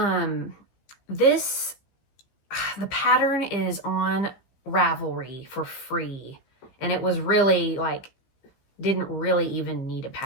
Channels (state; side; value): late; right; 15 ms